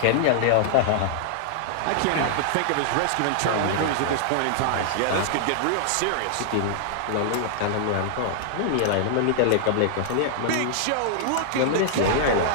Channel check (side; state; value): both; different; correlation -0.01